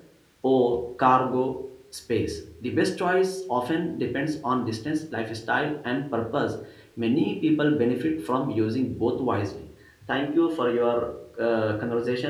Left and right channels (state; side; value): identical; both; correlation 1.00